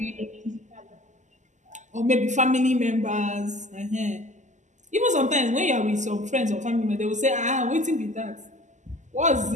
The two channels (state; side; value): late; left; 0.34 ms